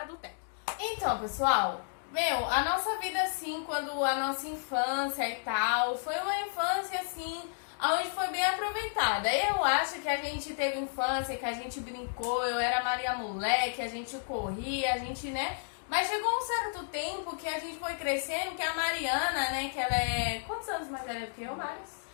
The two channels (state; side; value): silent; right; digital silence